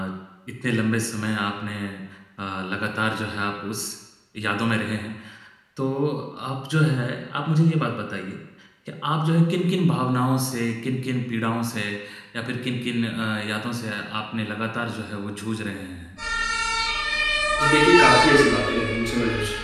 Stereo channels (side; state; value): both; identical; correlation 1.00